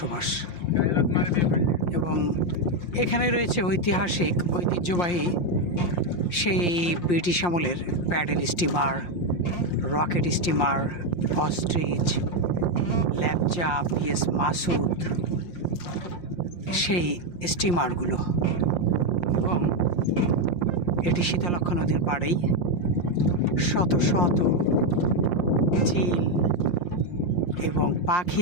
এবং এখানে রয়েছে ঐতিহাসিক ঐতিহ্যবাহী সেই ব্রিটিশ আমলের paddle steamer, rocket steamer, ostrich, Lepcha, PS Masud, সেই স্টিমারগুলো। এবং এটি শীতলক্ষ্যা নদীর পাড়েই শত শত চিল এবং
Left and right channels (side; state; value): right; late; 5.7 ms